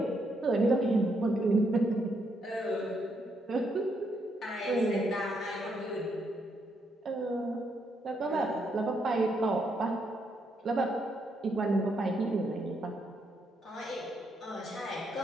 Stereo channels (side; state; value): both; normal; correlation 0.77